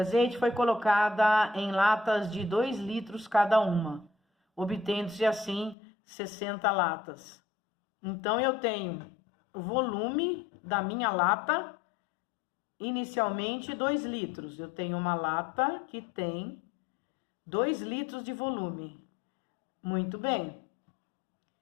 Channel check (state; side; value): drops out; right; at 5.8 s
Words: foi colocada em latas de 2 litros cada uma, obtendo-se assim 60 latas. Então, eu tenho o volume da minha lata, inicialmente 2 litros. Eu tenho uma lata que tem 2 litros de volume. Muito bem.